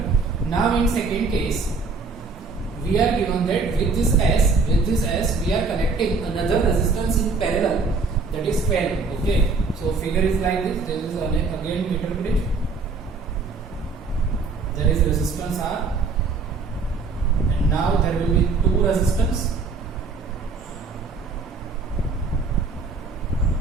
Now in second case, we are given that with this S, we are connecting another resistance in parallel, that is 12. Okay, so figure is like this. There is again meter bridge. There is resistance R, and now there will be two resistance.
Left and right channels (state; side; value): quieter; left; 4.3 dB